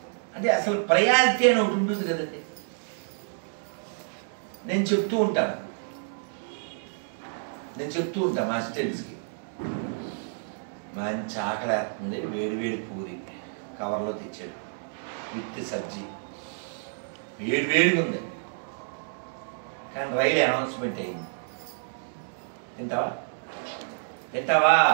అంటే అసలు ప్రయారిటీ అని ఒకటి ఉంటుంది కదండి. నేను చెప్తూ ఉంటాను మా స్టూడెంట్స్కి, మంచి ఆకలేస్తుంది, వేడి వేడి పూరి కవర్లో తెచ్చాడు విత్ సబ్జీ, వేడి వేడిగా ఉంది. కానీ రైలు అనౌన్స్మెంట్ అయింది. తింటావా తింటావా?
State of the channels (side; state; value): left; silent; digital silence